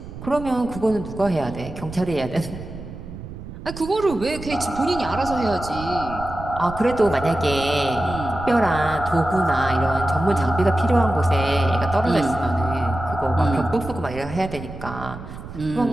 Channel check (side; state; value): right; noise; rumble, 12 dB below the sound